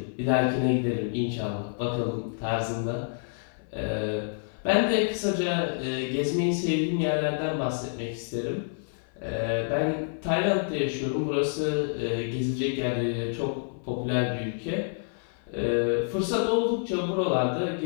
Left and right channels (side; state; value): right; silent; 56 dB below the other